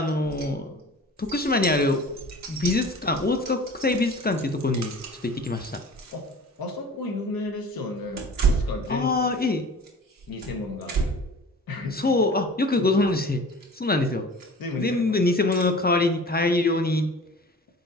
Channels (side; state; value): both; normal; correlation 0.42